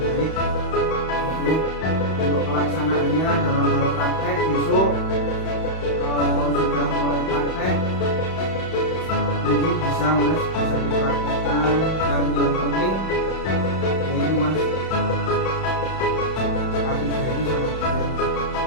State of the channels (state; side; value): late; right; 31 ms